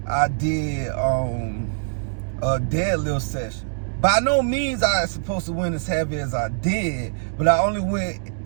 I did a deadlift session. By no means I was supposed to win as heavy as I did, but I only went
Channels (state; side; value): silent; left; digital silence